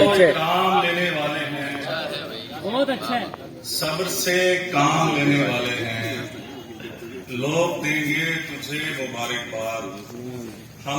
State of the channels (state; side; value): identical; both; correlation 1.00